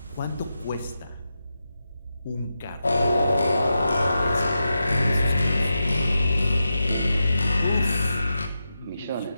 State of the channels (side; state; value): both; inverted; correlation -0.89